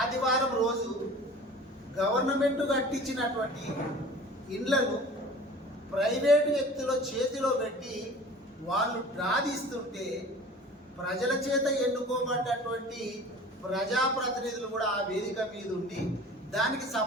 రోజు గవర్నమెంట్ కట్టించినటువంటి ఇండ్లను ప్రైవేటు వ్యక్తుల చేతిలో పెట్టి వాళ్ళు డ్రాదీస్తుంటే ప్రజల చేత ఎన్నుకోబడ్డటువంటి ప్రజాప్రతినిధులు కూడా ఆ వేదిక మీద ఉండి దానికి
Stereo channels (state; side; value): normal; both; correlation 0.43